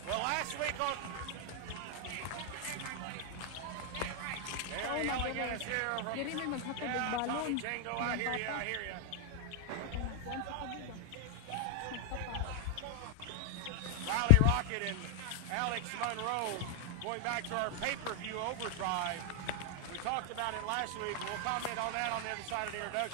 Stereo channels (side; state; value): both; different; correlation 0.00